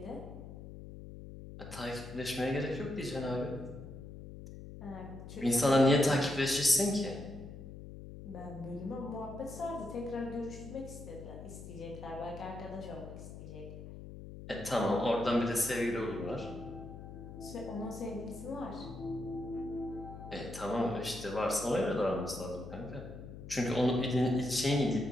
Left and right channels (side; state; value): left; noise; hum, 12 dB below the sound